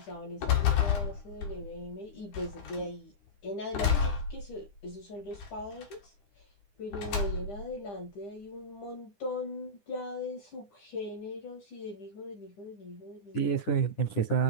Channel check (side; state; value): right; late; 10 ms